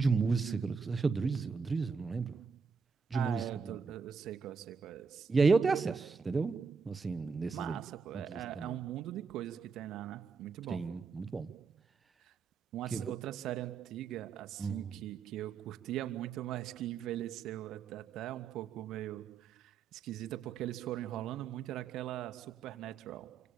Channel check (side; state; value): left; quieter; 5.4 dB